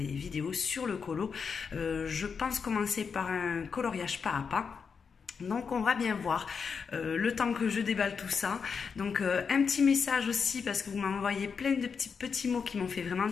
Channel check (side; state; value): right; quieter; 5.9 dB